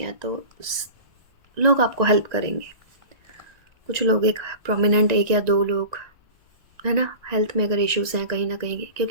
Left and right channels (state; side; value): late; left; 1.9 ms